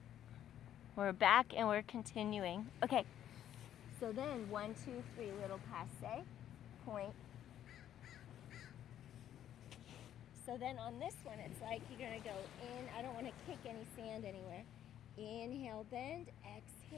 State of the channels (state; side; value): quieter; right; 10.9 dB